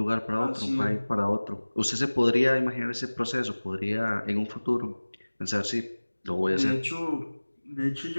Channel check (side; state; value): both; inverted; correlation -1.00